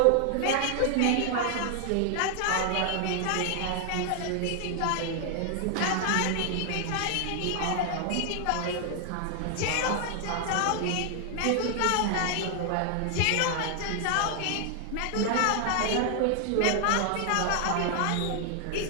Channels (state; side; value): different; both; correlation 0.00